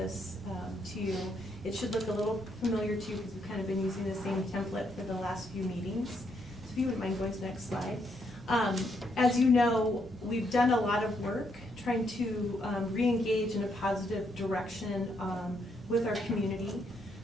to you. It should look a little familiar to you because we've kind of been using the same template for the last few meetings. So if you wouldn't mind going to the next slide. As you know, we've done a lot of work trying to re-engage in a positive direction with our community.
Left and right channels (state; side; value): normal; both; correlation 0.76